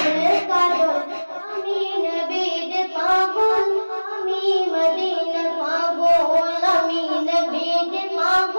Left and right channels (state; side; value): inverted; both; correlation -1.00